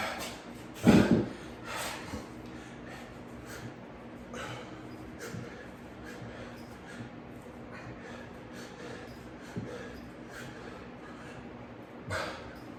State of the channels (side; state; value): both; identical; correlation 1.00